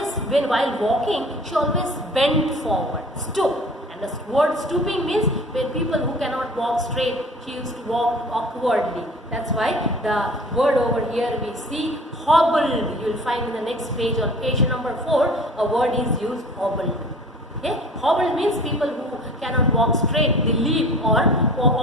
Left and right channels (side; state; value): both; normal; correlation 0.45